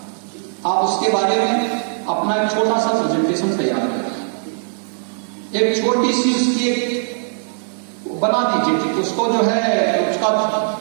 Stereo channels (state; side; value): silent; left; 66 dB below the other